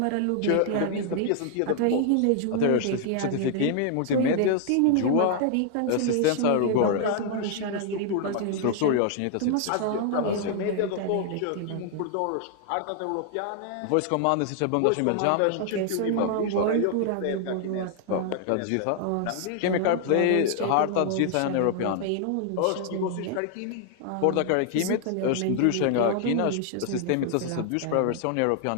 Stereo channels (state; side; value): different; both; correlation 0.00